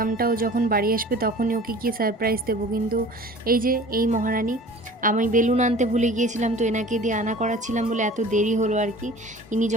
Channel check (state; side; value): normal; both; correlation 0.44